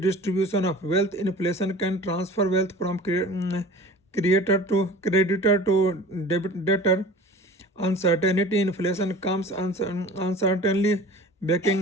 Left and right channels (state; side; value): normal; both; correlation 0.41